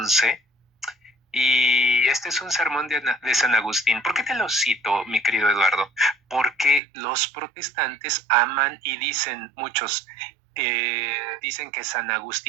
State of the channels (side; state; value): left; drops out; at 6.8 s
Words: Y este es un sermón de San Agustín. ¿Por qué te lo cito, mi querido Eduardo? Porque los protestantes aman y dicen, muchos dicen que San